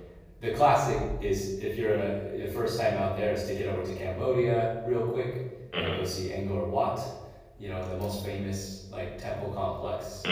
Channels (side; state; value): both; identical; correlation 1.00